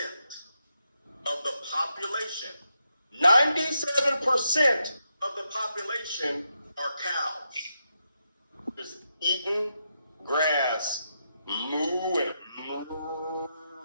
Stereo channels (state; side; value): inverted; both; correlation -0.84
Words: of the population, 97% of the population are cows. Just eating grass, moo and moo.